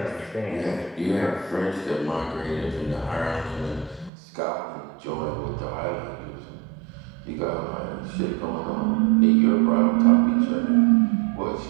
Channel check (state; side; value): drops out; left; at 4.1 s